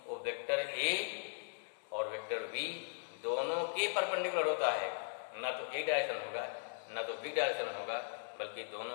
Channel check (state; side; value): silent; right; digital silence